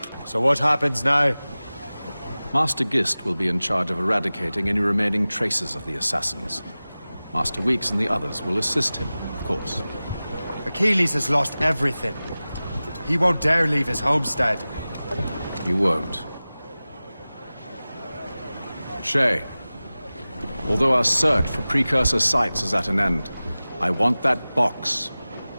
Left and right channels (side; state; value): both; inverted; correlation -0.97